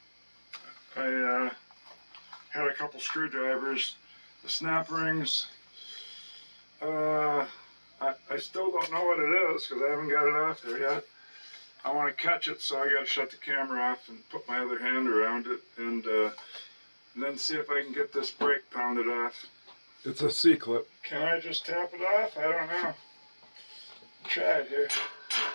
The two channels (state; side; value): inverted; both; correlation -1.00